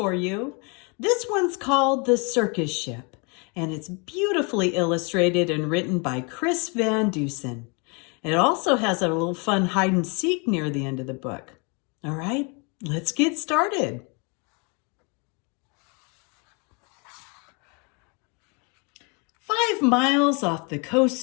you. This one's called The Circus Ship, and it's beautifully illustrated and written by Chris Van Dusen. It also has a little fun hide and seek near the end of the book. All right, let's get started. "5 miles off the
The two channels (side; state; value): right; quieter; 32.7 dB